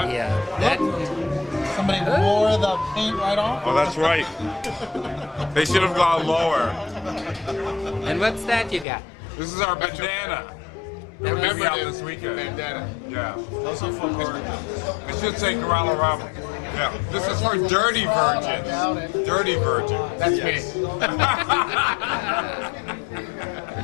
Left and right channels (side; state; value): right; drops out; at 8.8 s